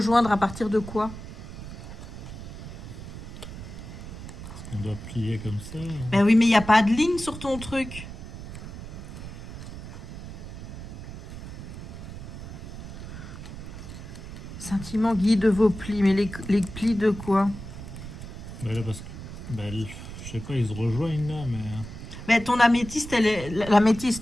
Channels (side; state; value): right; noise; rumble, 11 dB below the sound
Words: à partir de quoi? On doit plier comme ça. Ben oui, mais il n'y a pas de ligne sur ton truc. sentiment guide vos plis. Mais les plis de quoi? Bah là, parce que. Bah, je sais pas, ils se rejoignent là, mais. Mais ton améthyste,